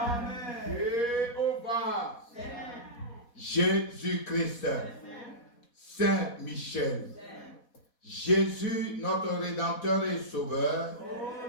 Jéhovah, Jésus-Christ, Saint Michel, Jésus, notre Rédempteur et Sauveur,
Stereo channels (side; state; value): right; late; 4.2 ms